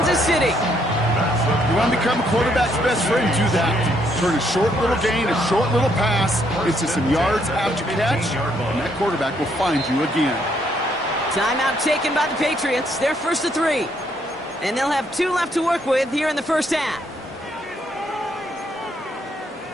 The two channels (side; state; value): both; normal; correlation 0.71